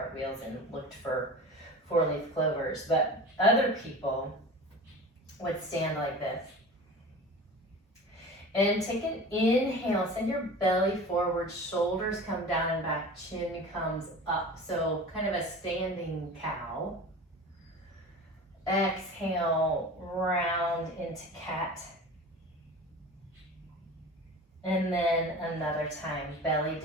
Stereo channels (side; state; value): both; normal; correlation 0.36